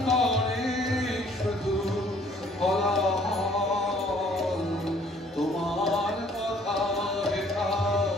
করে শুধু কোলাহল। তোমার কথা হেথা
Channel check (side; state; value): both; normal; correlation 0.59